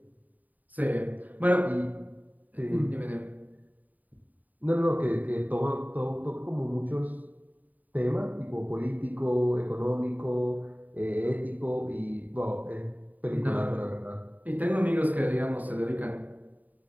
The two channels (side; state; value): left; late; 0.079 ms